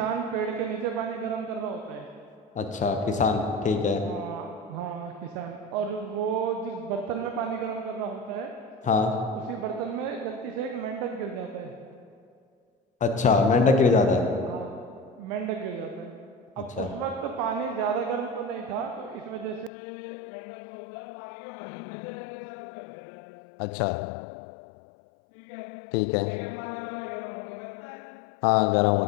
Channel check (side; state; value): right; drops out; at 19.7 s